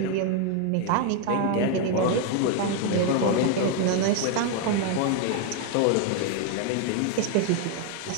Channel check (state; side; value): different; both; correlation 0.01